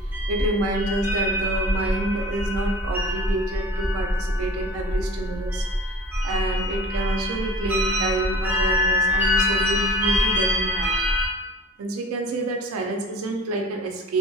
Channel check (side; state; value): both; normal; correlation 0.44